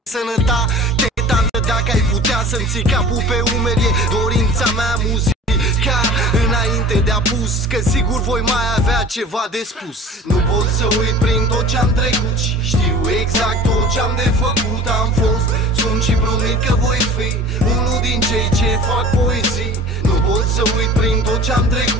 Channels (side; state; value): both; normal; correlation 0.42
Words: sănătate, tată, dacă ai putea să-mi ții capul pe umeri. E dorința mea muzica înainte de apus, că sigur voi mai avea ceva de spus. Nu pot să uit prin tot ce-am trecut și știu exact tot ce-am de făcut. Am fost, sunt și promit că voi fi unul din cei ce fac poezii. Nu pot să uit prin tot ce-am